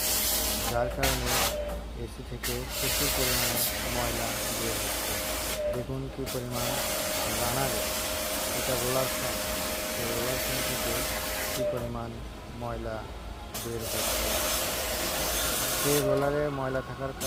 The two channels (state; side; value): identical; both; correlation 1.00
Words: যার কারণে এসি থেকে প্রচুর পরিমাণে ময়লা বের হচ্ছে। দেখুন কী পরিমাণ রানারে, এটা রোলার ফ্যান, এই রোলার ফ্যান থেকে কী পরিমাণ ময়লা বের হচ্ছে। এই রোলারে ময়লা থাকার